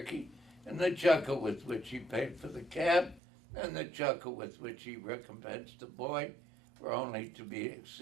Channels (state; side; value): drops out; left; at 3.2 s